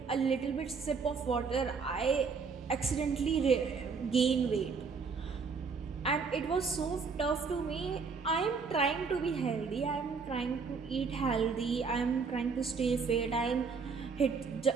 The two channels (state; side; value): quieter; left; 5.2 dB